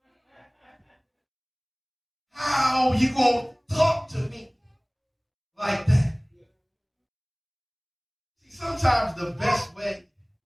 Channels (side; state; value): both; identical; correlation 1.00